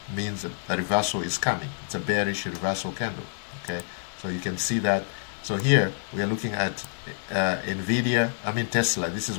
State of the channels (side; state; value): right; silent; digital silence